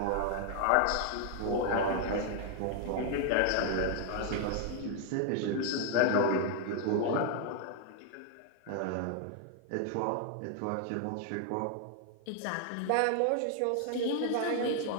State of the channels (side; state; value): both; different; correlation 0.00